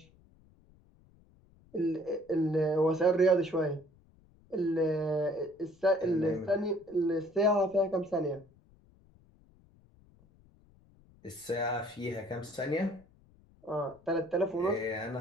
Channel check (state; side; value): noise; left; rumble, 29 dB below the sound